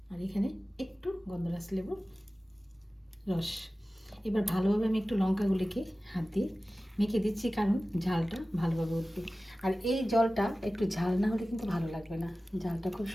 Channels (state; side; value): normal; both; correlation 0.96